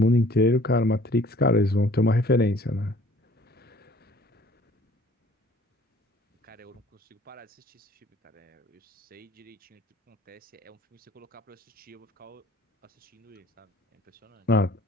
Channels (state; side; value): normal; both; correlation 0.55